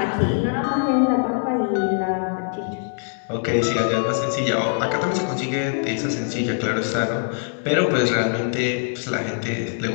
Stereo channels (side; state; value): right; silent; digital silence